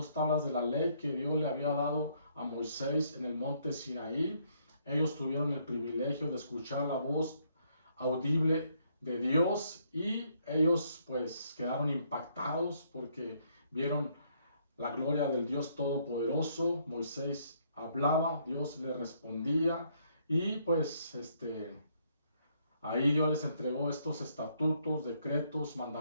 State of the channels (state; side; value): inverted; both; correlation -0.70